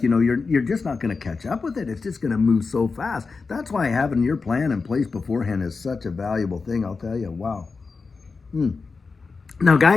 you're just not going to catch up with it. It's just going to move so fast. That's why having your plan in place beforehand is such a valuable thing. I'll tell you, wow. Now,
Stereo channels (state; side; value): quieter; right; 4.5 dB